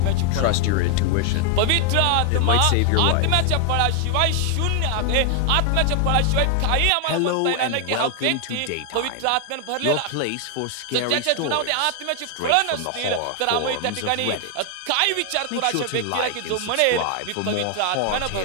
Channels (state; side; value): different; both; correlation 0.00